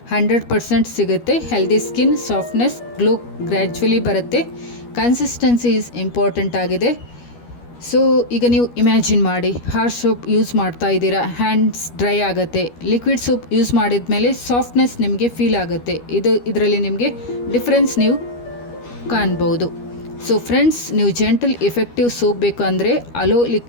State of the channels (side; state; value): right; late; 12 ms